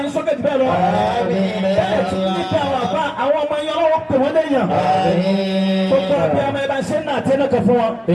yín sókè jù bẹ́ẹ̀ lọ bẹ́ẹ̀ tí ní kí àwọn àbá àwọn ọmọ yín ọlọ́run pè wọ́n léèyàn gbogbo àbí ọmọ ẹ bá ṣe ń nà àti ẹnìkan fún wọn.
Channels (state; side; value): identical; both; correlation 1.00